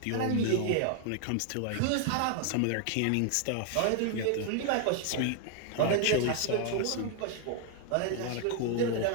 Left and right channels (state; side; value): different; both; correlation 0.00